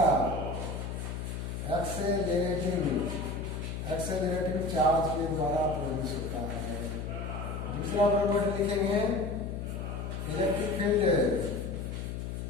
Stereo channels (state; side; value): noise; left; hum, 5 dB below the sound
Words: एक्सेलरेटिंग चार्ज के द्वारा प्रोड्यूस होता है। दूसरा प्रॉपर्टी लिखेंगे electric field